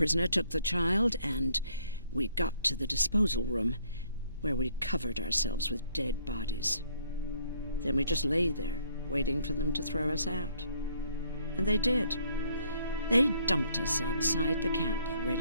took the child, and we got to the disposal room, where we covered ourselves with dead bodies. Then we just lay there, waiting for them to throw us out. And they did. They dumped us outside the camp,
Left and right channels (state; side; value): inverted; both; correlation -0.65